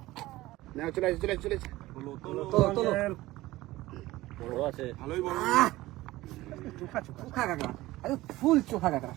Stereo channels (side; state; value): left; quieter; 17.8 dB